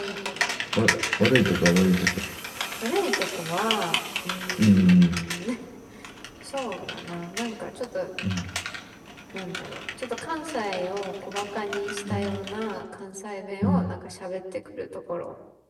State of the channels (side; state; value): both; identical; correlation 1.00